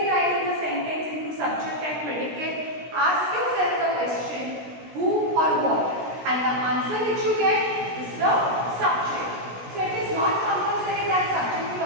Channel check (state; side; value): late; left; 16 ms